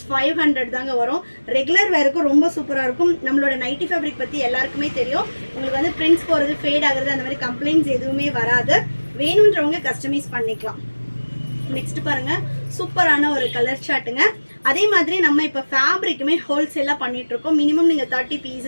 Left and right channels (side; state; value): both; inverted; correlation -1.00